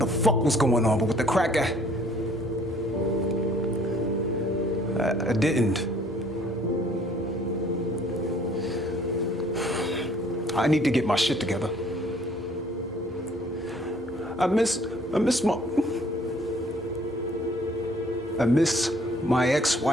fuck was going on, but with the crack, I didn't. I need to get my shit together. I miss my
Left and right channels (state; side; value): normal; both; correlation 0.58